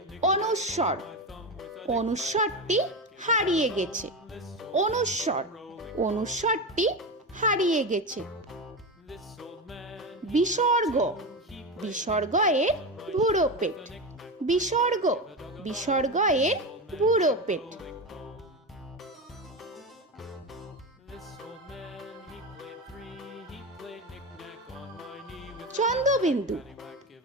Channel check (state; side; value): normal; both; correlation 0.19